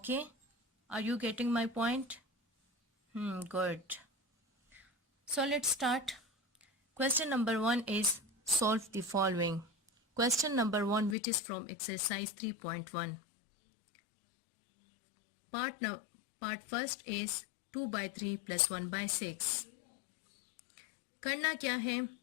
Are you getting my point? Good. So let's start. Question number 1 is solve the following. Question number 1, which is from exercise 3.1. Part first is 2 by 3 plus 1 by 6. करना क्या है?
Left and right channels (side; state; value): right; drops out; at 11.2 s